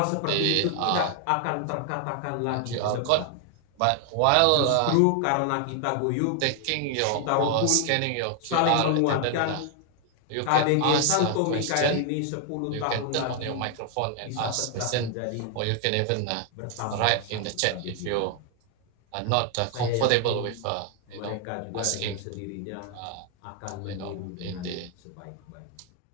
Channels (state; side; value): different; both; correlation 0.00